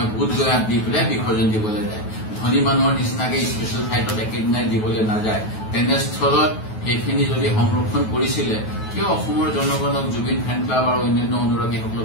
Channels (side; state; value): right; late; 9.3 ms